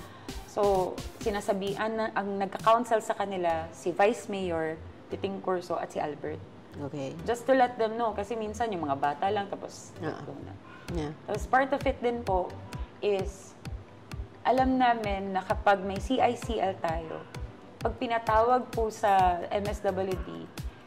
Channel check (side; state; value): both; identical; correlation 1.00